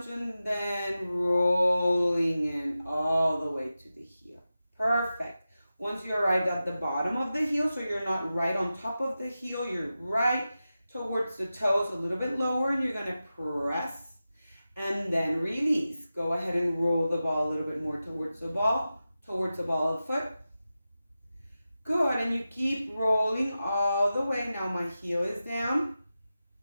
and then rolling in all the way to the heel. Perfect. Once you arrive at the bottom of the heel, so you're not right on top of the heel, you're right towards the toes, a little bit lower, and you're going to press and then release. Go ahead and roll the ball a little bit more towards the ball of the foot. Good, and you keep rolling all the way. Now my heel is down.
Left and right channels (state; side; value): inverted; both; correlation -0.93